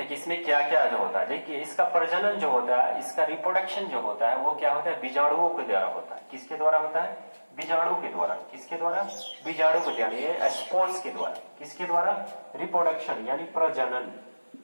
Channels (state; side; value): inverted; both; correlation -1.00